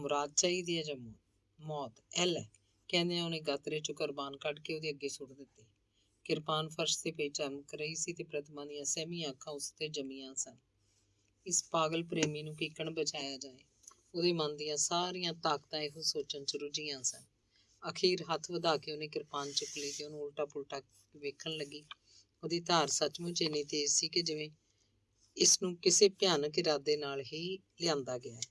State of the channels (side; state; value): both; identical; correlation 1.00